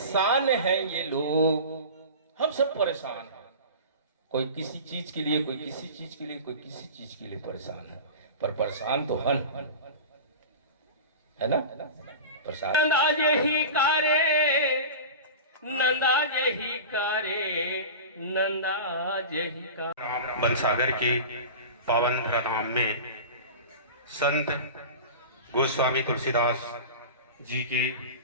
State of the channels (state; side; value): inverted; both; correlation -0.32